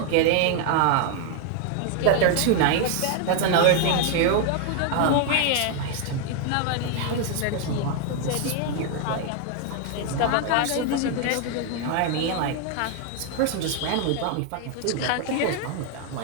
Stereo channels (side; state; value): both; different; correlation 0.00